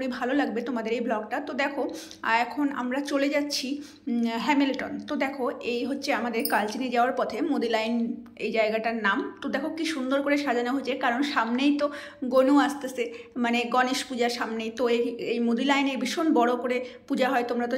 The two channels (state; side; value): identical; both; correlation 1.00